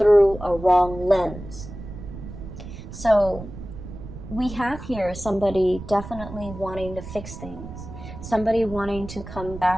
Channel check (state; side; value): noise; right; rumble, 12 dB below the sound